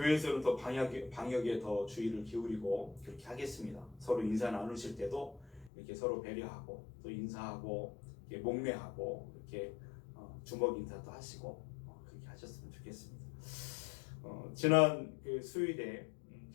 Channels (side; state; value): right; drops out; at 5.7 s